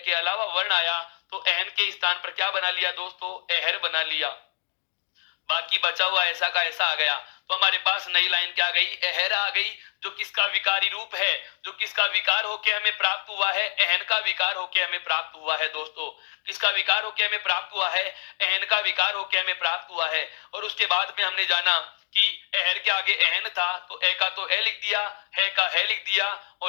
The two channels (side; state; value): right; silent; digital silence